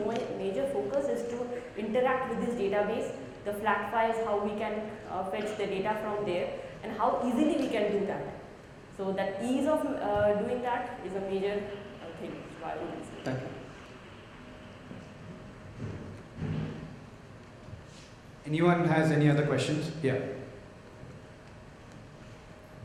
major focus is to interact with this database, the flat files, how we can fetch the data from there, and how easily we can do that. So that ease of doing that is a major thing which BioRuby is. Thank you. Anyone has any other questions? Yeah.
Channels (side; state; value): both; identical; correlation 1.00